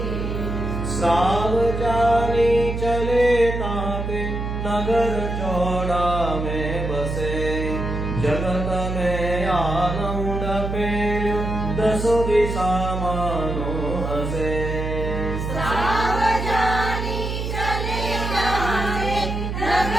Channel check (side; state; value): right; noise; hum, 3 dB below the sound